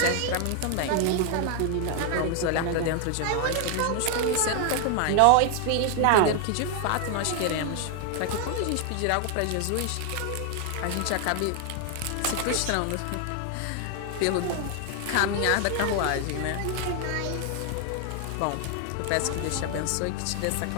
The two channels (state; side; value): different; both; correlation 0.00